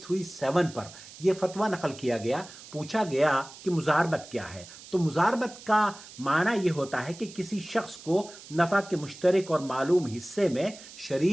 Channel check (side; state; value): right; noise; hiss, 17 dB below the sound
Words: پر یہ فتویٰ نقل کیا گیا۔ پوچھا گیا کہ مزاربت کیا ہے، تو مزاربت کا معنی یہ ہوتا ہے کہ کسی شخص کو نفع کے مشترک اور معلوم حصے میں